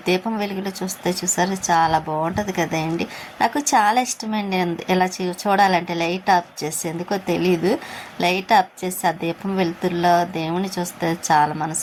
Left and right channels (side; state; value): both; identical; correlation 1.00